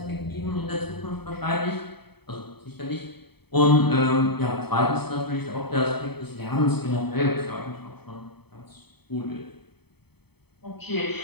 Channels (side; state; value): right; late; 0.97 ms